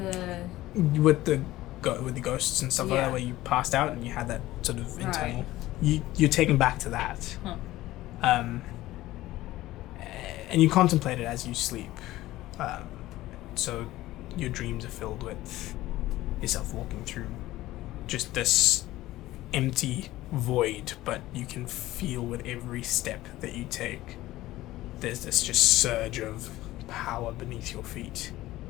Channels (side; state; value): right; quieter; 16.4 dB